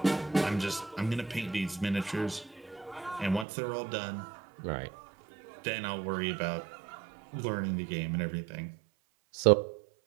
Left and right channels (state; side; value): drops out; left; at 3.5 s